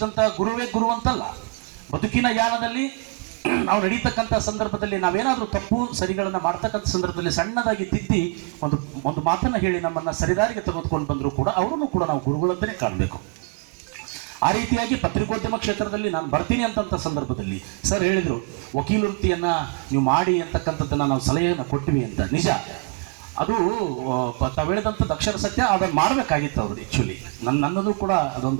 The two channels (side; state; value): left; quieter; 30.4 dB